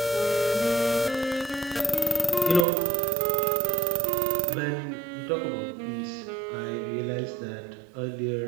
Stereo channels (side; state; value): left; drops out; at 2.7 s